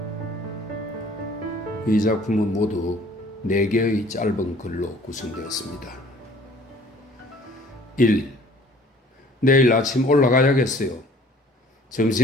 이 작품은 모두 4개의 짧은 글로 구성되었습니다. 1. 내일 아침 올라가야겠어요.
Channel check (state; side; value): normal; both; correlation 0.53